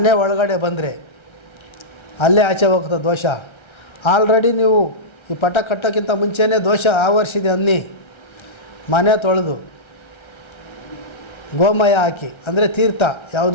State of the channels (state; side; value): late; right; 1.3 ms